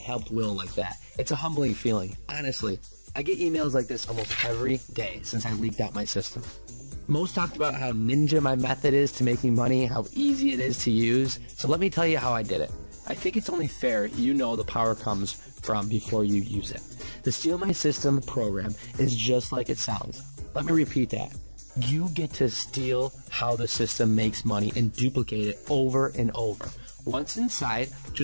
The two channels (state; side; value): inverted; both; correlation -1.00